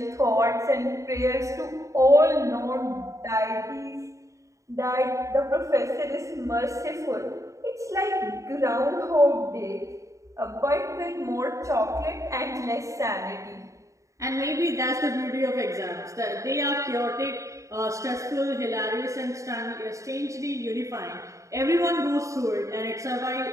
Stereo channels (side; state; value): left; late; 0.15 ms